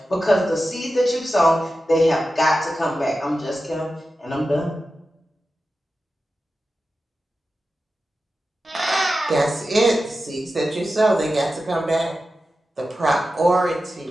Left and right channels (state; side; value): normal; both; correlation 0.93